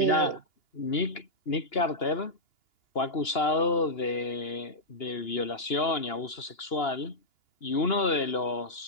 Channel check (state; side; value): late; right; 2.9 ms